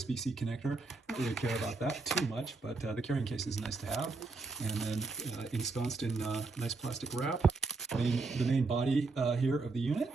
connector. I don't really care about that too much, but the carrying case is nice to have. And then ensconced in nice plastic wrap. The main body here of the unit.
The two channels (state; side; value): quieter; left; 3.8 dB